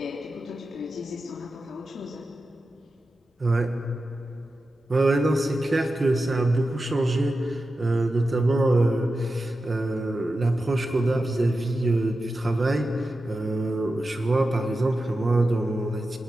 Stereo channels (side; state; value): both; normal; correlation 0.91